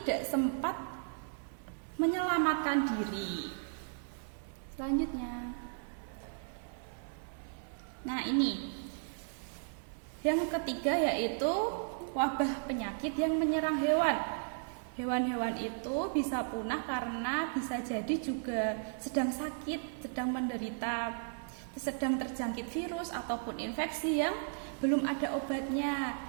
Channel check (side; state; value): left; silent; digital silence